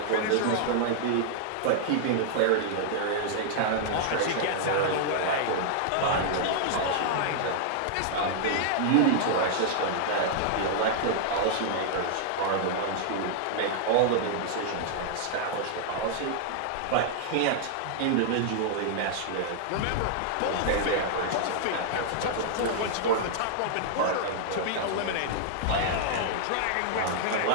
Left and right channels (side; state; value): both; different; correlation -0.01